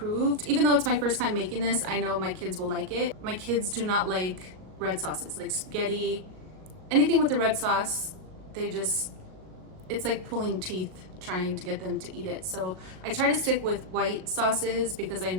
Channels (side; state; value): left; late; 38 ms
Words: Even though it's my first time making this, I know my kids will like it. My kids do not like red sauces, like spaghetti, anything with the red sauce. It's like pulling teeth trying to get them to eat it. So I try to stick with white sauces because I